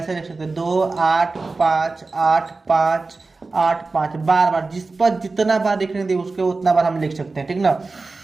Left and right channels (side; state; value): left; quieter; 3.7 dB